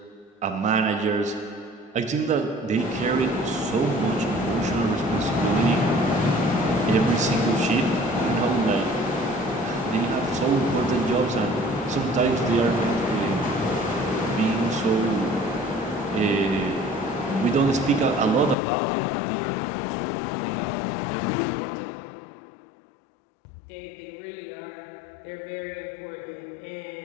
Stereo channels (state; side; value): drops out; right; at 18.6 s